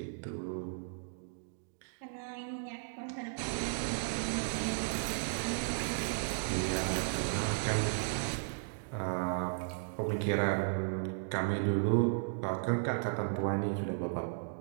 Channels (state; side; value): silent; left; digital silence